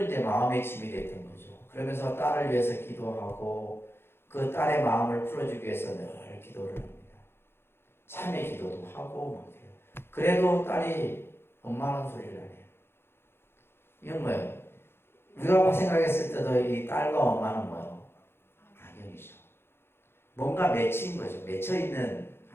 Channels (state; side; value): late; right; 0.11 ms